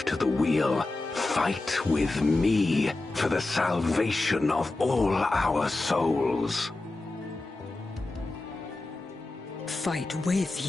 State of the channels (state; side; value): quieter; right; 3.0 dB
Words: to the wheel, fight with me for the salvation of all our souls. Fight with